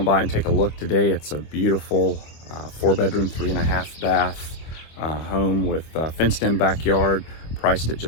by and take a look today. It's a beautiful 4-bedroom, 3.5 bath home with fenced in backyard, priced at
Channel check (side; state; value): right; late; 25 ms